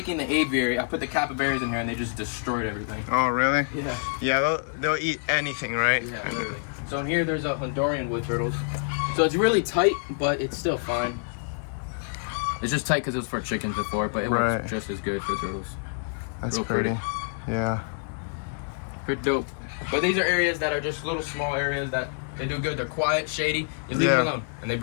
the aviary, I put the capybaras in here and they just destroyed everything. oh really? Yeah. Yeah, they'll eat anything, right? Yeah, really. So in here, there's a Honduran wood turtles. So it's really tight, but it's still fine. It's just tight because it was for chickens before, but it Right. works just as good for turtles. That's Real pretty. pretty. Yeah. Pretty dope. But these are areas that are just little small areas that they do good. They're quiet, shady. You leave Yeah. them alone, and they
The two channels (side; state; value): right; silent; digital silence